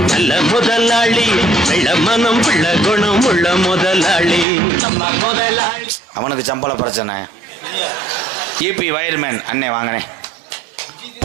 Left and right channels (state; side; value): drops out; left; at 4.5 s